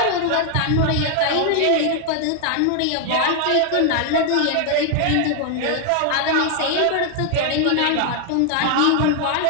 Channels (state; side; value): different; both; correlation 0.00